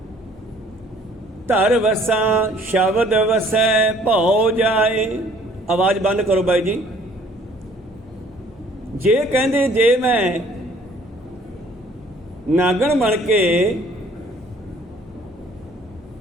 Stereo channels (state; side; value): normal; both; correlation 0.57